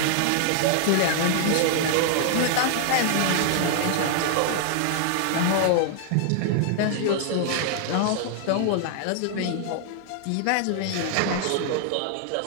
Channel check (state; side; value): different; both; correlation 0.00